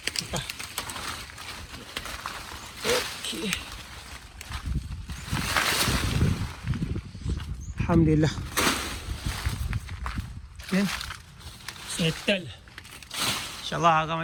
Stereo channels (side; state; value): both; identical; correlation 1.00